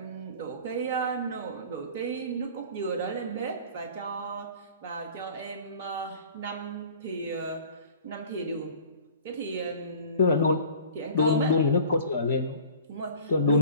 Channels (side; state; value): both; inverted; correlation -0.44